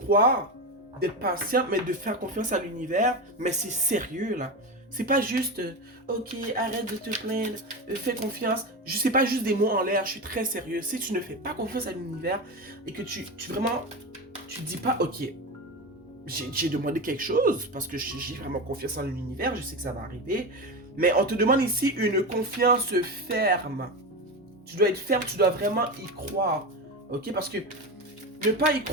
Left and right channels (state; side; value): normal; both; correlation 0.20